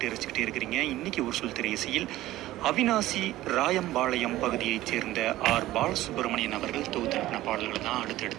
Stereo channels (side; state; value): left; quieter; 15.8 dB